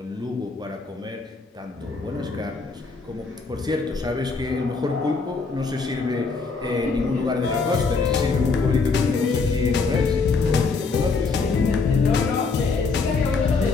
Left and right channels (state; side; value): quieter; right; 4.4 dB